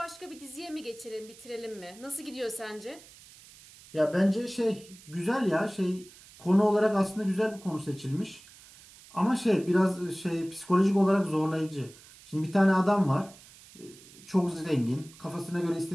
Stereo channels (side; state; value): right; noise; hiss, 22 dB below the sound